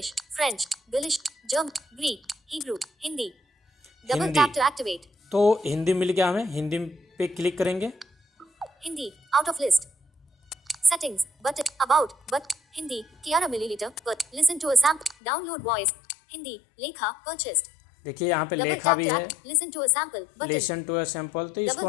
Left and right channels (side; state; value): right; drops out; at 15.2 s